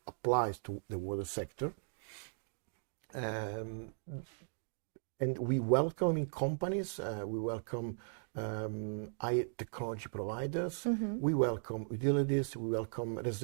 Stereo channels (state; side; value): silent; left; digital silence